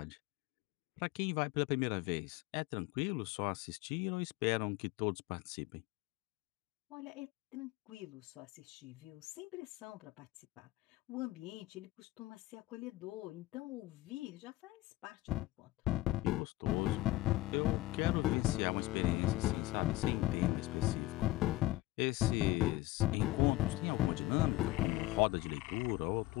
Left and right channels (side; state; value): right; quieter; 18.1 dB